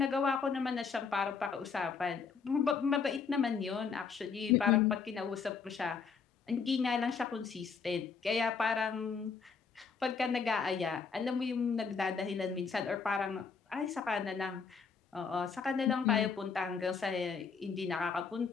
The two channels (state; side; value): quieter; right; 5.6 dB